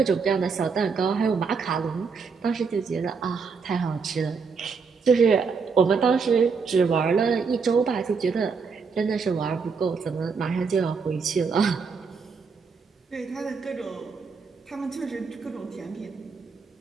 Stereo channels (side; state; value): left; quieter; 5.2 dB